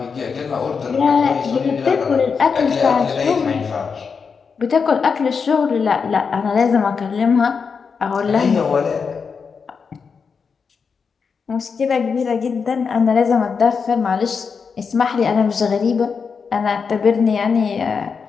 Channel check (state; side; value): quieter; right; 5.7 dB